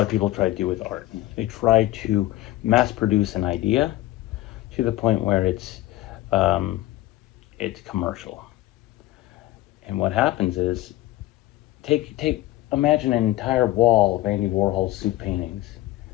of people try to do with art. They try to mass produce an idea to the point where um, it's commercial. And what happens is, take imagine an entire wall of Andy Warhol's soup paintings.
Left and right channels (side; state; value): right; quieter; 16.2 dB